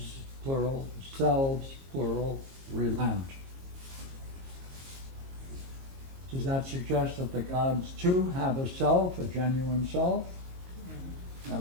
plural, selves, plural, relent. Does that suggest that the gods too have a self, a genuine self?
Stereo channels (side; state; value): left; late; 22 ms